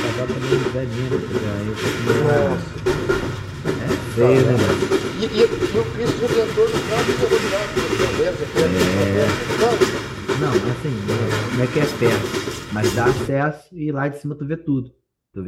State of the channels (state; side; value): identical; both; correlation 1.00